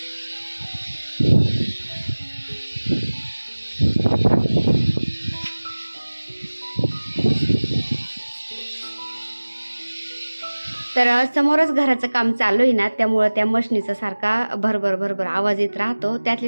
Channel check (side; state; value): both; inverted; correlation -1.00